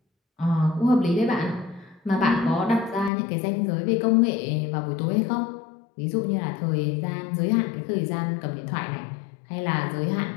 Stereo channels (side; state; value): right; drops out; at 3.1 s